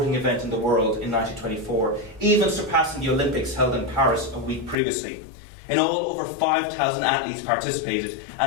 event in the world in 1924, even surpassing the Olympics held in Paris a week previously. In all, over 5,000 athletes participated,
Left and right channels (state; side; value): drops out; right; at 4.8 s